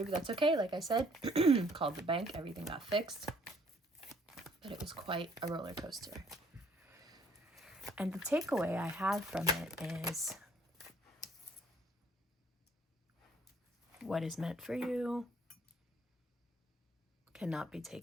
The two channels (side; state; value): both; normal; correlation 0.62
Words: but that's okay. Like I said, called the bank. Everything got fixed. But it was quite a roller coaster. And the takeaway I have from it is what is meant for you cannot be